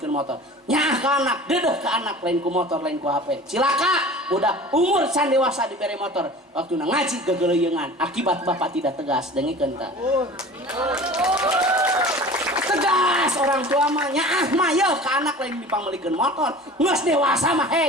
motor. Nyah ke anak, dedeh ke anak, lain ku motor, lain ku HP. Cilaka, udah umur can dewasa diberi motor. Waktu ngaji gegeleuyeungan, akibat bapak tidak tegas, dengikeun tah. Tegas orang tua mah nyaah mah yeuh ke anak lain dipanggilkan motor. Geus dewasa mah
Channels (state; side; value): normal; both; correlation 0.40